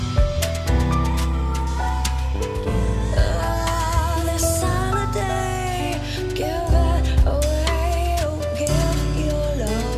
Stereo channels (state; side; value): identical; both; correlation 1.00